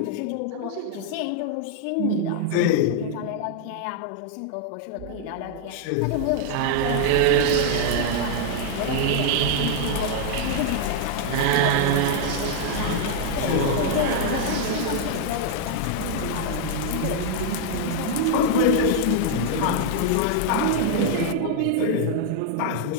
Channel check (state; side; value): different; both; correlation -0.01